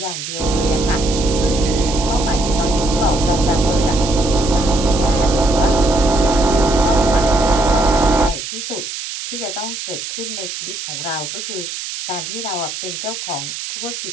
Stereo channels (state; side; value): noise; right; hiss, 7 dB below the sound